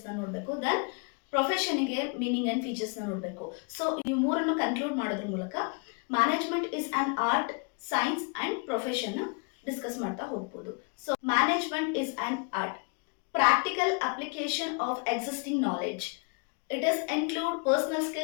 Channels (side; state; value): right; quieter; 34.8 dB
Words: ನೋಡಬೇಕು, ದೆನ್ ಪ್ರೊಫೆಷನ್ಗೆ ಮೀನಿಂಗ್ ಆ್ಯಂಡ್ ಫೀಚರ್ಸ್ನ ನೋಡಬೇಕು. ಸೊ ಈ ಮೂರನ್ನು ಕನ್ಕ್ಲೂಡ್ ಮಾಡೋದ್ರ ಮೂಲಕ management is an art, science and ಪ್ರೊಫೆಷನ್ನ ಡಿಸ್ಕಸ್ ಮಾಡ್ತಾ ಹೋಗ್ಬೋದು. So management is an art, practical application of existing knowledge. It is include personal